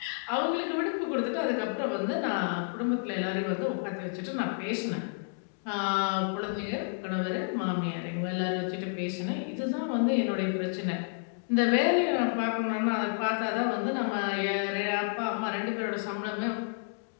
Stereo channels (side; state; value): right; silent; digital silence